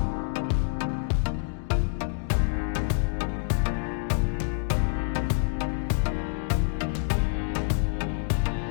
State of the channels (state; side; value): silent; right; 60 dB below the other